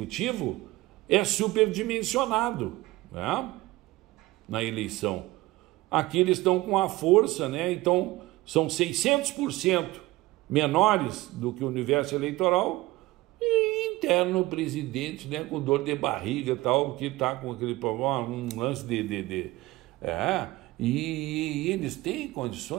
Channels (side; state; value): left; quieter; 19.4 dB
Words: é superdimensionado, né, na eleição. Aqui eles estão com a força, né? Então são 600% menores do que o universo eleitoral, e interno o presidente, né, com dor de barriga e tal, que está com aquele problema, um lance e eles têm